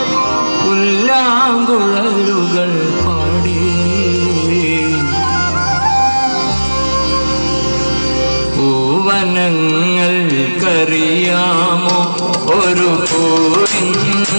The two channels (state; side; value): inverted; both; correlation -1.00